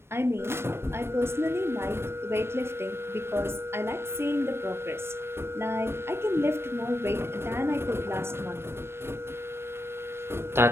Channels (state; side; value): late; left; 0.12 ms